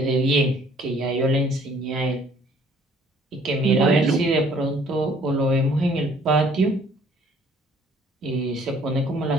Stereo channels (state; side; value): normal; both; correlation 0.58